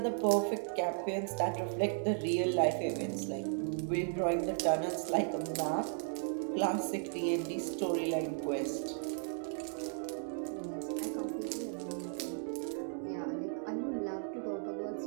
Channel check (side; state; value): left; silent; 54 dB below the other